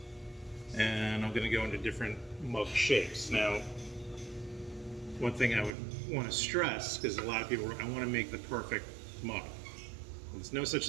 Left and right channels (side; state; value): left; drops out; at 5.7 s